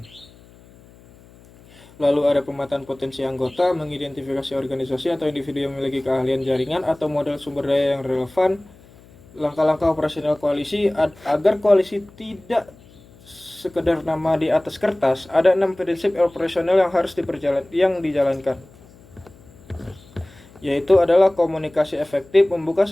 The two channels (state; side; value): noise; left; hum, 25 dB below the sound